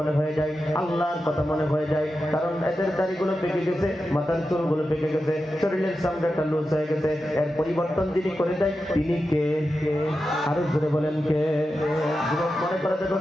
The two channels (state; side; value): normal; both; correlation 0.91